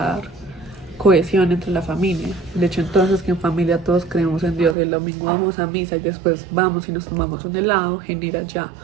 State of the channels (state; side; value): drops out; left; at 4.8 s